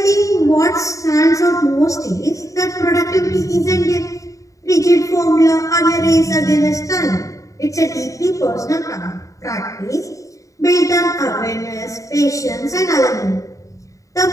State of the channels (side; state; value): right; late; 0.16 ms